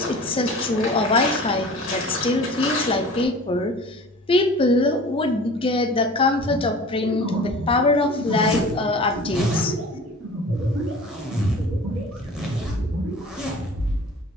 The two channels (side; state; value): both; normal; correlation 0.41